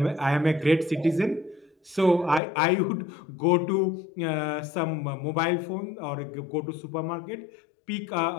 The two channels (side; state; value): right; drops out; at 2.4 s